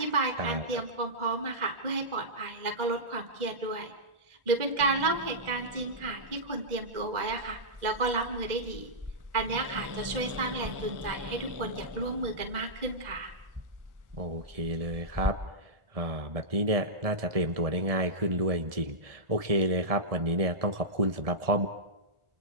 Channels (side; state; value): left; late; 1.4 ms